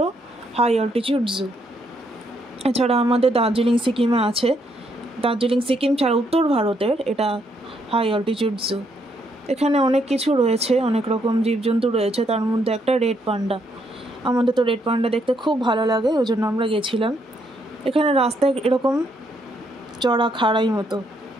হাই অল্টিটিউড জু। এছাড়া আমাদের দার্জিলিং সিকিমে আছে। দার্জিলিং সিকিম ছাড়া উত্তর ভারতের এটা হাই অল্টিটিউড জু। এখানে অনেক কিছু রয়েছে, অনেক রকম জীবজন্তু রয়েছে, তার মধ্যে একটা রেড পান্ডা। আমাদের তো রেড পান্ডা দেখতে খুব ভালো লাগে, ওই জন্য আমরা গেছিলাম। এখানে রাস্তায় এরকম চড়া খাড়াই মতো,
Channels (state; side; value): normal; both; correlation 0.74